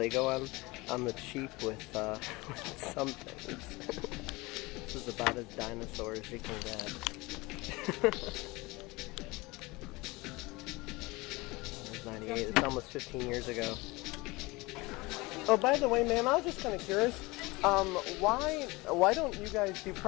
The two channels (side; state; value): right; quieter; 23.0 dB